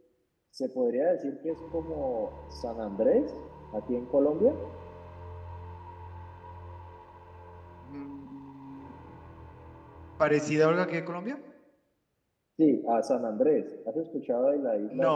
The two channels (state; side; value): identical; both; correlation 1.00